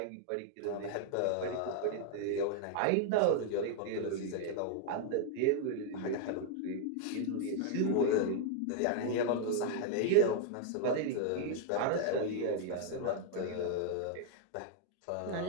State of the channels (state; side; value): different; both; correlation 0.00